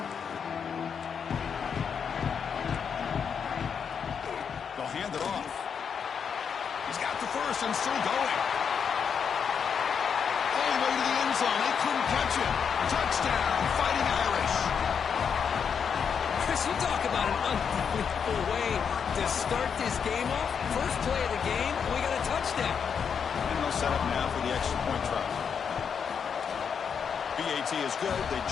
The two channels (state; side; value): quieter; right; 6.9 dB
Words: They'll hand it off. He's got the first and still going. All the way to the end zone. They couldn't catch it. Touchdown, Fighting Irish. Chris, you talk about an unbelievable way to start this game off. First play of the game, we got a touchdown. And they'll set up now for the extra point try. BAT is good. They